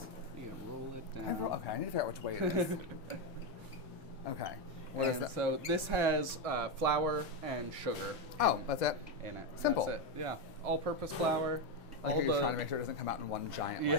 You can roll it down. Okay, I need to figure out which way it is. Okay. What is And that? so this has flour and sugar Oh, that's it? in it. Simple. That's it. Yeah, all-purpose flour. I like how you're trying to make sure it doesn't come out in one giant,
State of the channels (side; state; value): both; normal; correlation 0.07